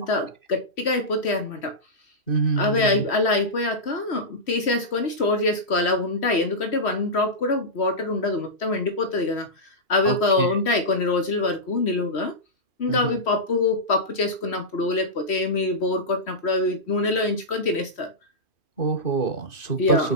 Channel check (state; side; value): late; right; 3.1 ms